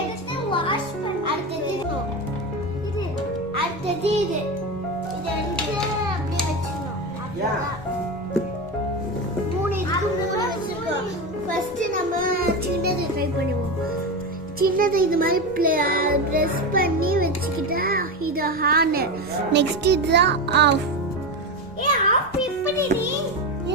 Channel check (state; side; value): normal; both; correlation 0.19